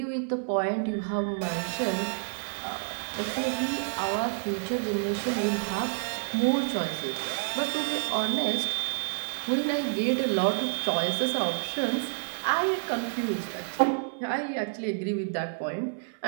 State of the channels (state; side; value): silent; left; 59 dB below the other